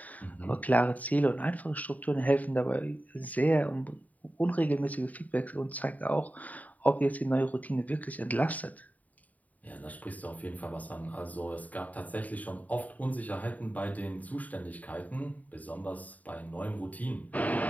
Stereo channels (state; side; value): late; right; 0.074 ms